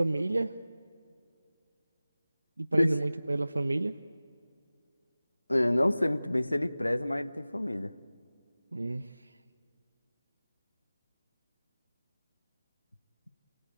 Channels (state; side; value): inverted; both; correlation -0.97